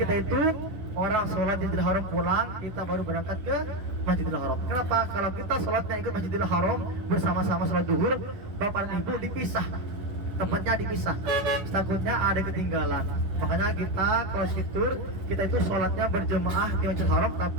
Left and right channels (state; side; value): late; left; 10 ms